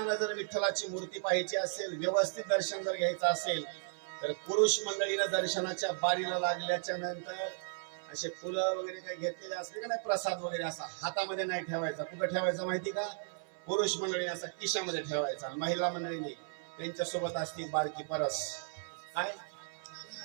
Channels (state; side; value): silent; left; 54 dB below the other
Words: जर विठ्ठलाची मूर्ती पाहायची असेल, व्यवस्थित दर्शन जर घ्यायचं असेल तर पुरुष मंडळीनं दर्शनाच्या बारीला लागल्याच्या नंतर असे फुलं वगैरे काही घेतलेले असले का नाही, प्रसाद वगैरे असा हातामध्ये नाही ठेवायचा. कुठं ठेवायचा माहिती का? पुरुष मंडळीने असा खिशामध्ये ठेवायचा. महिला मंडळीने त्यांच्या सोबत असते बारकी परस. काय